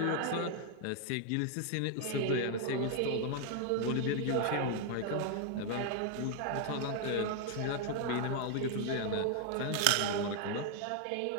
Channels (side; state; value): both; different; correlation 0.00